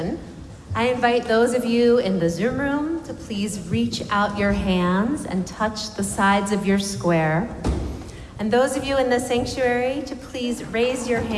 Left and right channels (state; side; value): identical; both; correlation 1.00